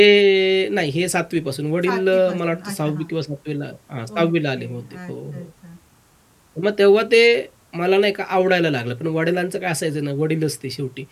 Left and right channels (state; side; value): identical; both; correlation 1.00